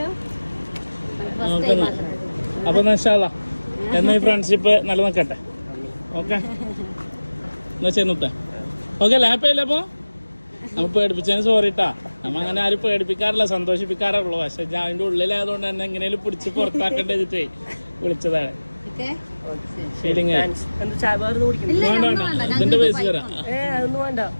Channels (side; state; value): both; inverted; correlation -1.00